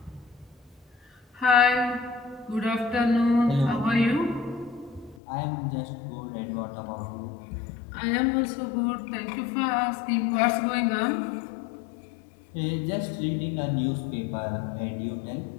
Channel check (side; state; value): right; drops out; at 5.2 s